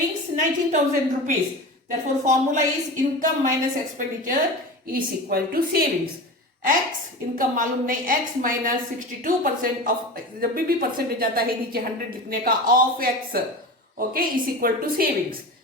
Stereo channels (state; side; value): normal; both; correlation 0.29